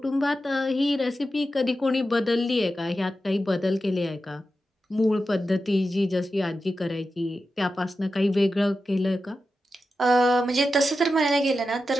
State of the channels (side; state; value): both; normal; correlation 0.91